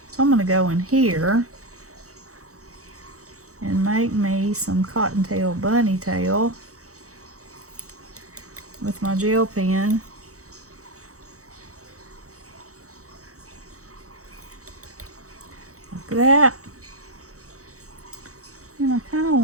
So I'm going to go in here and make me some cottontail bunny tail with my gel pen. Like that. And I kind of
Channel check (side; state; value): left; late; 0.65 ms